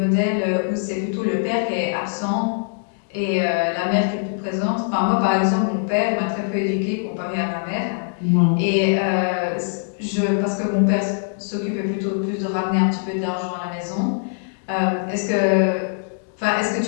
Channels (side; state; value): right; silent; digital silence